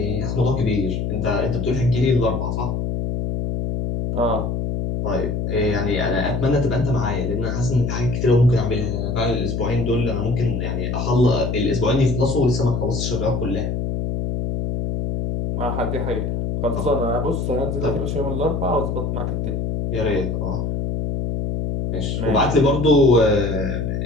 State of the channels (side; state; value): left; noise; hum, 1 dB below the sound